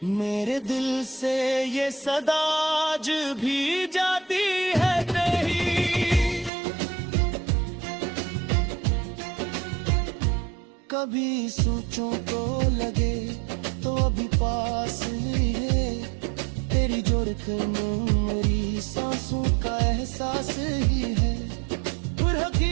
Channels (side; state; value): left; drops out; at 6.5 s